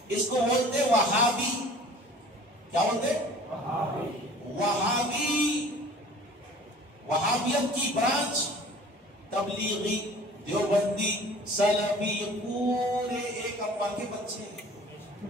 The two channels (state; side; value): normal; both; correlation 0.47